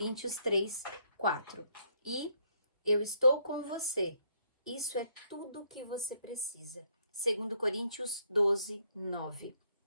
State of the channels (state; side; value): inverted; both; correlation -0.70